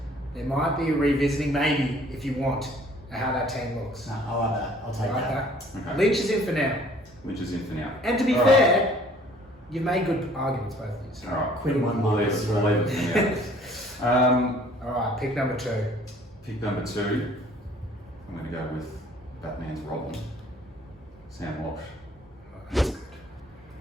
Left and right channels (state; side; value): normal; both; correlation 0.56